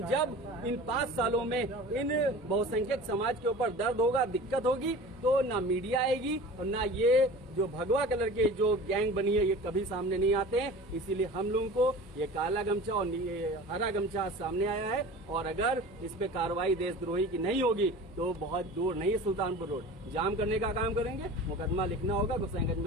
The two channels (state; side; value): normal; both; correlation 0.38